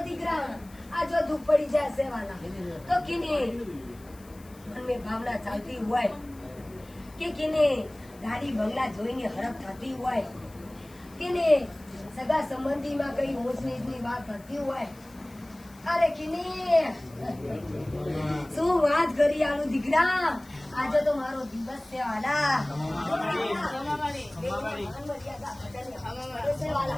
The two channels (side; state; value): left; noise; hiss, 25 dB below the sound